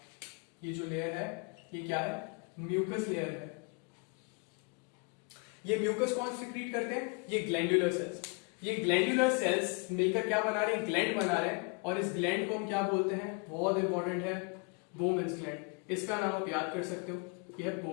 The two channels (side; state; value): right; quieter; 32.9 dB